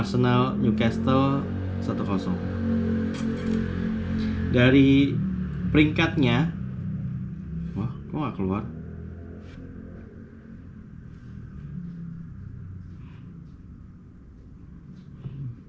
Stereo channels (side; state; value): both; identical; correlation 1.00